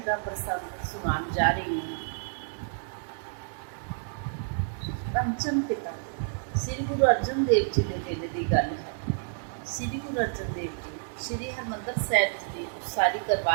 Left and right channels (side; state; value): left; silent; 58 dB below the other